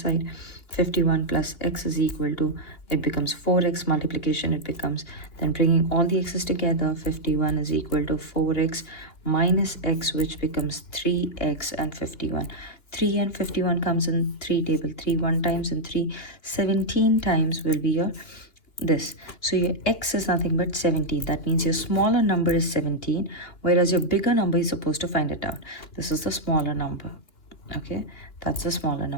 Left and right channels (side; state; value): right; late; 2.8 ms